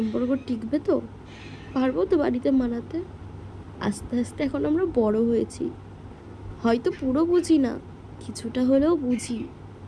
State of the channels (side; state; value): both; identical; correlation 1.00